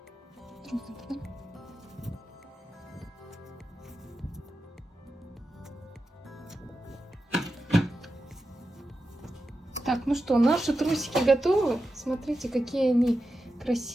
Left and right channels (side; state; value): both; normal; correlation 0.91